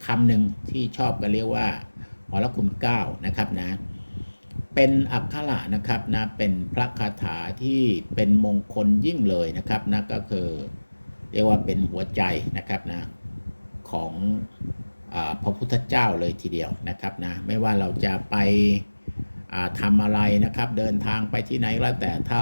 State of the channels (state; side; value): inverted; both; correlation -1.00